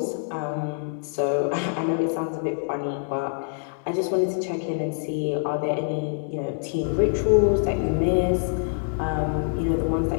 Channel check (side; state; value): right; silent; digital silence